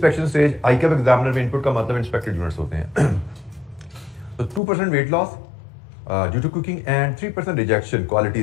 stage ICAP examiner में इनपुट का मतलब इंस्पेक्टेड यूनिट्स होते हैं। तो 2% weight loss due to cooking and 3% rejection, quality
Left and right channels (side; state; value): right; drops out; at 4.6 s